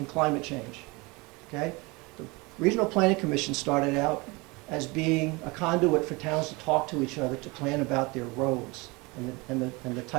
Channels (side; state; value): left; quieter; 25.6 dB